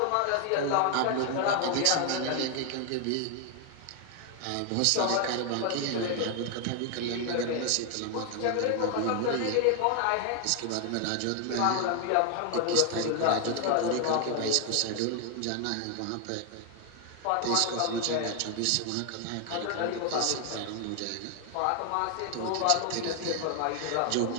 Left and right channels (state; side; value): different; both; correlation 0.00